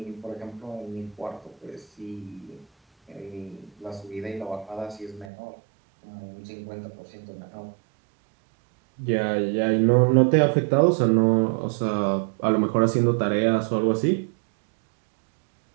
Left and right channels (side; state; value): left; drops out; at 5.3 s